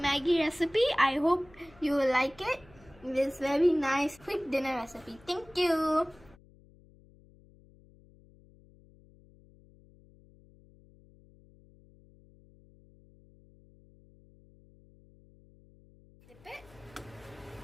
Maggie recipe. I hope you will like it. It is very nice quick dinner recipe. Thank you. Flip it.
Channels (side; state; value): left; noise; hum, 26 dB below the sound